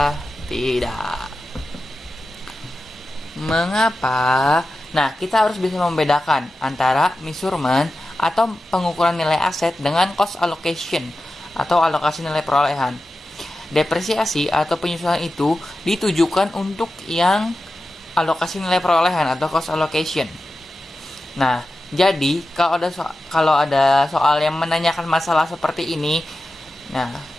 tidak. Mengapa? Nah, kita harus bisa membedakan antara measurement atau pengukuran nilai aset dengan cost allocation atau alokasi nilai perolehan. Depresiasi atau penyusutan itu ditujukan untuk yang alokasi nilai perolehan atau cost allocation. Nah, jadi kalau ada soal yang menanyakan masalah seperti ini, nah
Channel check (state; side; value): normal; both; correlation 0.92